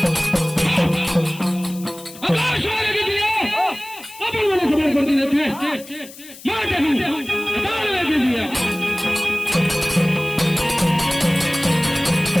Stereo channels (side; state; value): left; noise; hiss, 18 dB below the sound